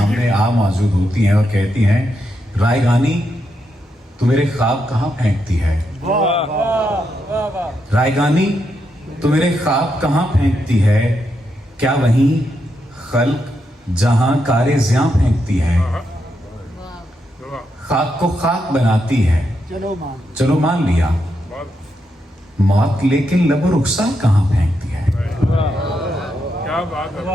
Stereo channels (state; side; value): normal; both; correlation 0.82